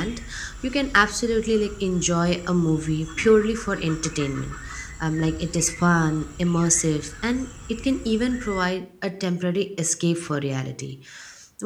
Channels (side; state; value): both; identical; correlation 1.00